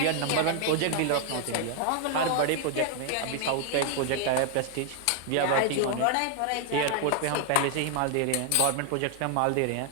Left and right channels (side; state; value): both; different; correlation 0.00